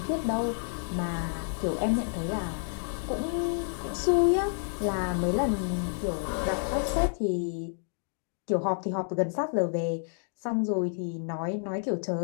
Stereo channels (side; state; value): right; silent; 58 dB below the other